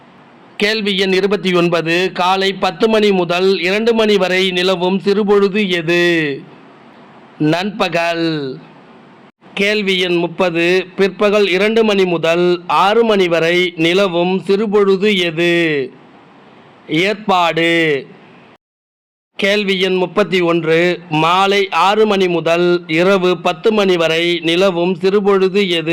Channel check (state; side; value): identical; both; correlation 1.00